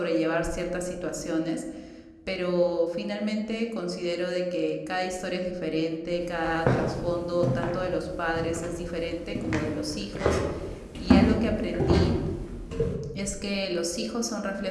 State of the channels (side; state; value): both; identical; correlation 1.00